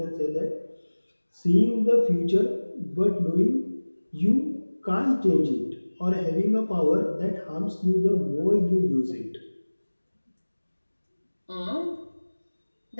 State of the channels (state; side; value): inverted; both; correlation -1.00